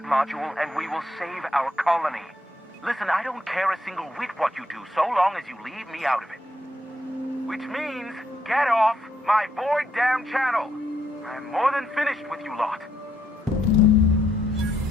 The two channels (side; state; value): both; normal; correlation 0.75